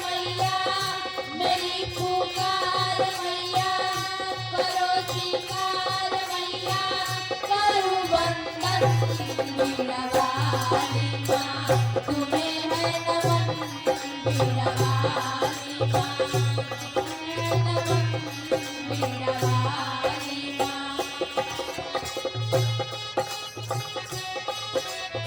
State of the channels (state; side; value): identical; both; correlation 1.00